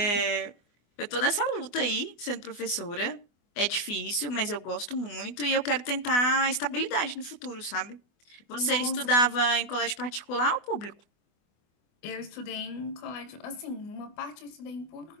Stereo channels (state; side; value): late; right; 24 ms